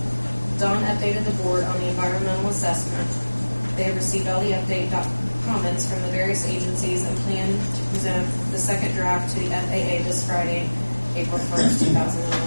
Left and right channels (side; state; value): both; inverted; correlation -1.00